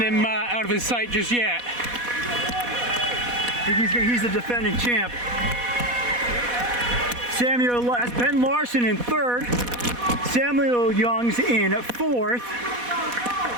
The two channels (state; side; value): late; left; 4.1 ms